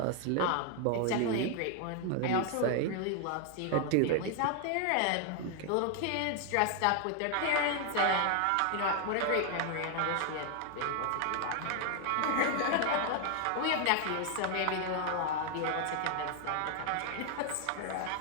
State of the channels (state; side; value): different; both; correlation 0.00